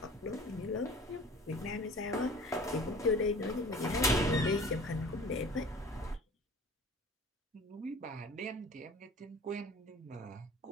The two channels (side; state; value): both; normal; correlation 0.44